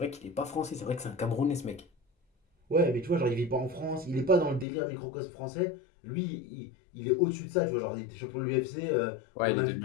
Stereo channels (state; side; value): drops out; right; at 4.7 s